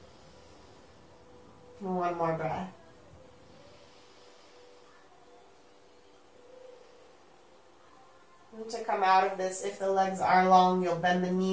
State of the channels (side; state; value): both; identical; correlation 1.00